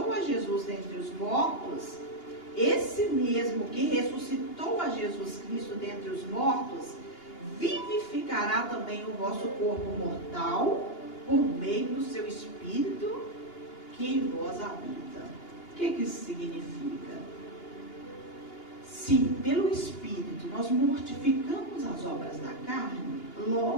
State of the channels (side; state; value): right; late; 2.8 ms